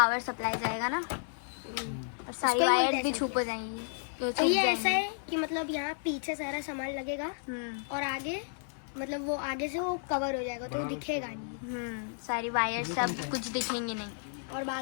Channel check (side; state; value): right; silent; 56 dB below the other